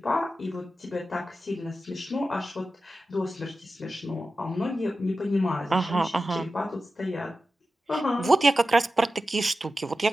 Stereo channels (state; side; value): normal; both; correlation 0.92